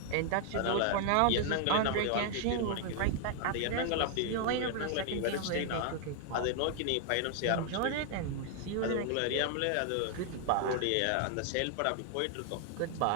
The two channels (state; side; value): different; both; correlation 0.00